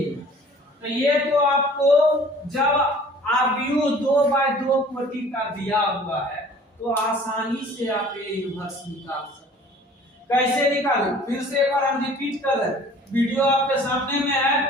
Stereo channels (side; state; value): both; normal; correlation 0.50